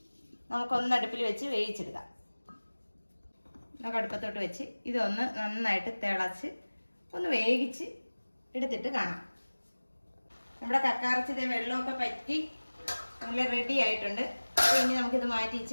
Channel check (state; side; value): inverted; both; correlation -1.00